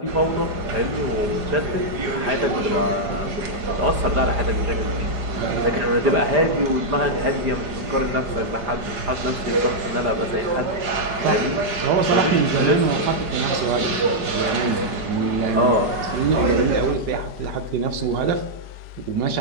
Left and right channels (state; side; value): late; left; 4.9 ms